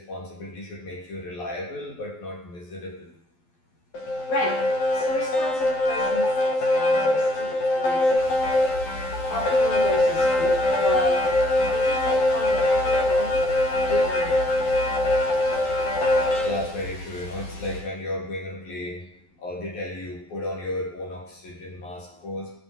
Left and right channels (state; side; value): late; right; 12 ms